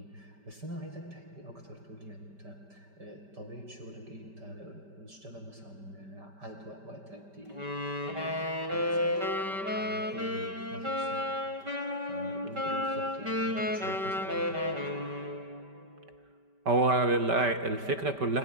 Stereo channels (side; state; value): left; late; 5.1 ms